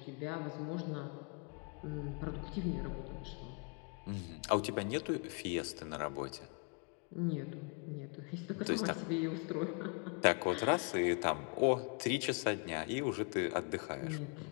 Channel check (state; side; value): quieter; right; 37.4 dB